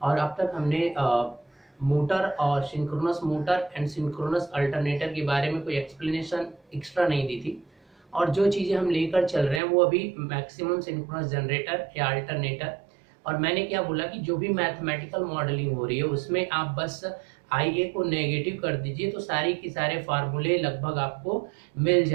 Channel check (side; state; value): left; drops out; at 9.6 s